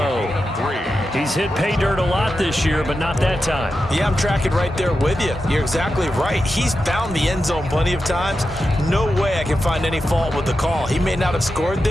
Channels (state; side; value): normal; both; correlation 0.90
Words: He's hit pay dirt a lot this year, but not that time. Yeah, I'm tracking right there with you. You're exactly right. He's found the end zone plenty of times. No way I can find any fault with the call. He may not have scored